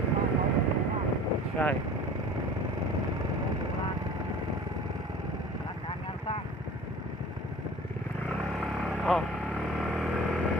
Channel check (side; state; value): both; normal; correlation 0.43